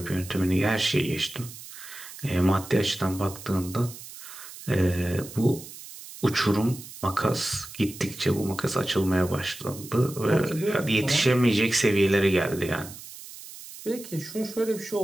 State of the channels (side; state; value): right; noise; hiss, 15 dB below the sound